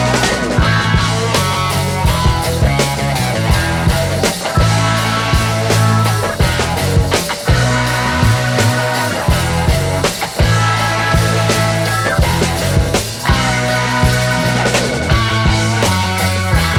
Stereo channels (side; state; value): both; identical; correlation 1.00